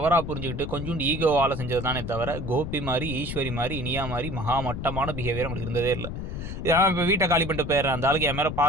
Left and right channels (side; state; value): left; noise; rumble, 6 dB below the sound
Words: புரிஞ்சுகிட்டு கொஞ்சோண்டு ஈகோவால செஞ்சது தானே தவிர, கோபி மாரி, ஈஸ்வரி மாரி, இனியா மாரி மகா மட்டமான பிஹேவியர் அவங்களுக்கு இருந்ததே இல்ல. நான் இப்ப வீட்ட காலி பண்ணிட்டு போயிடுறேன். அந்த ஆளுக்கு என் மேல